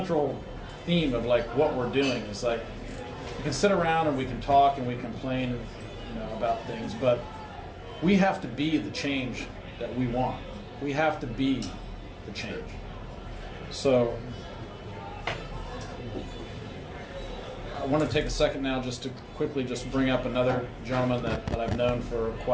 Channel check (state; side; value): identical; both; correlation 1.00